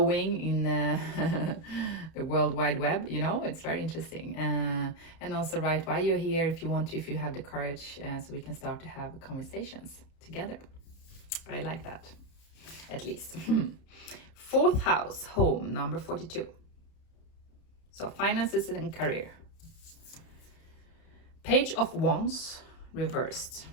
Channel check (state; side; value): late; right; 31 ms